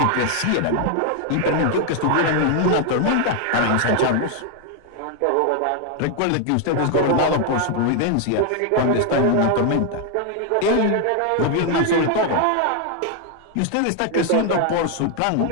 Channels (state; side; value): different; both; correlation 0.00